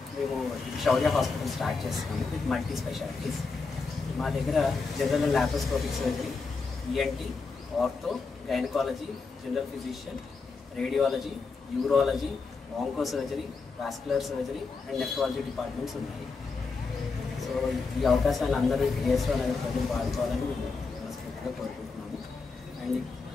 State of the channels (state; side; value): quieter; right; 4.4 dB